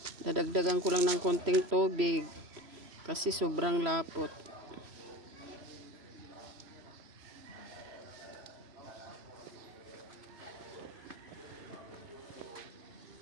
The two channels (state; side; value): late; left; 3.0 ms